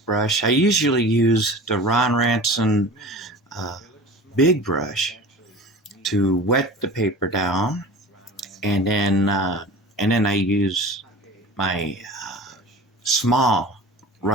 brush. I usually use the Ron Ranson uh, big brush to wet the paper down, and then I use my small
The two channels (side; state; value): both; normal; correlation 0.37